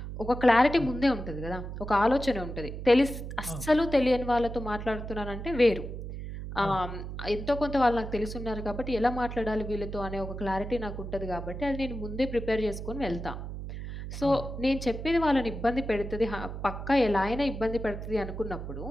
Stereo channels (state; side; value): noise; right; hum, 8 dB below the sound